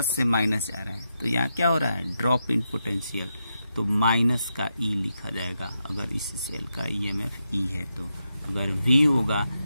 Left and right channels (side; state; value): both; inverted; correlation -0.85